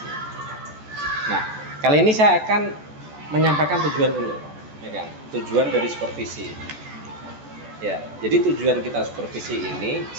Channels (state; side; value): late; left; 14 ms